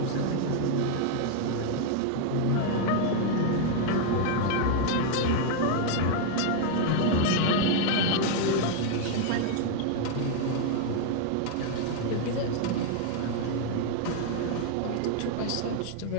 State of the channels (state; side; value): different; both; correlation 0.00